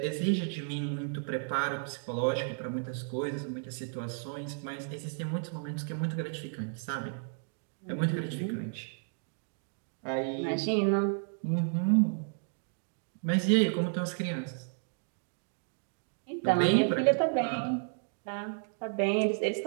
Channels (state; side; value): silent; left; digital silence